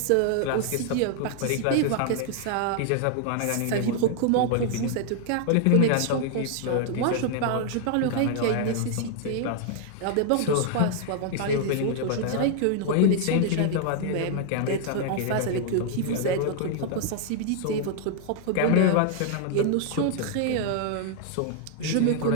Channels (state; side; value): different; both; correlation 0.00